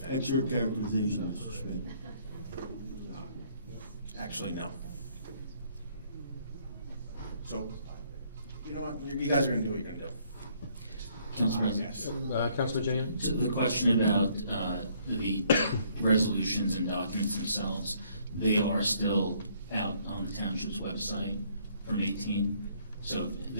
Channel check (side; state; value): both; inverted; correlation -0.65